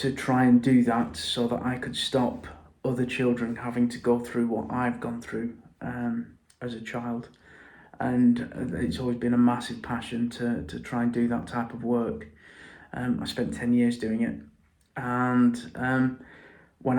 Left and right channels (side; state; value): both; identical; correlation 1.00